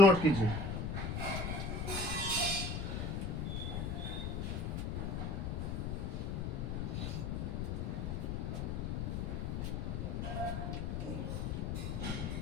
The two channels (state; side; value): noise; left; rumble, 1 dB below the sound